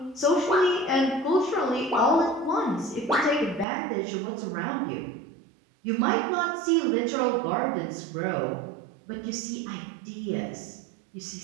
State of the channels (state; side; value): drops out; left; at 3.7 s